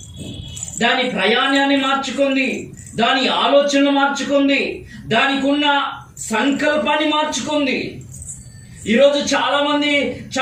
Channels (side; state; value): both; identical; correlation 1.00